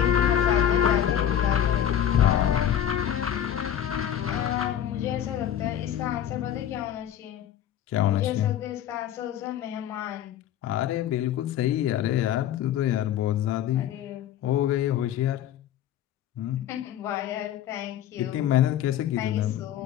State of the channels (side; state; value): right; quieter; 10.6 dB